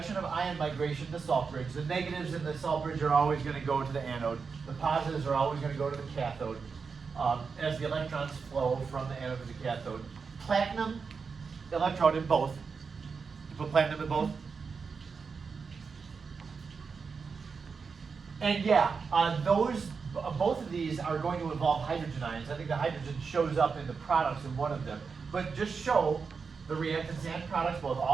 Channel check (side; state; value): left; quieter; 5.3 dB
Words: of ion migration to the salt bridge. The negatives in the salt bridge are always going to go to the anode. The positives are always going to go to the cathode as the electrons flow from the anode to the cathode. Platinum electrode in both. You put platinum in both. And yeah, those both of these are going to involve hydrogen ions. I think the hydrogen shows up in the products in one of them. But just show the reactants and products, both